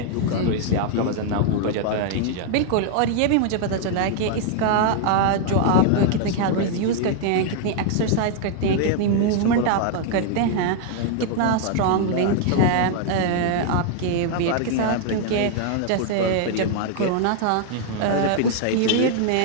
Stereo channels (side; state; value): both; different; correlation 0.00